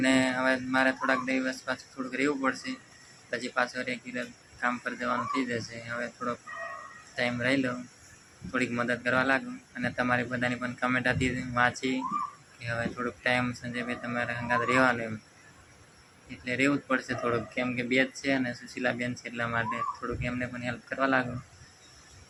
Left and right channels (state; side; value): identical; both; correlation 1.00